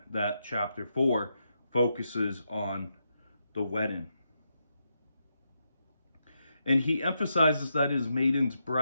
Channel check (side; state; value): both; inverted; correlation -0.83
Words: that chapter 4 focuses on the wedding. And he emphasizes that his maiden's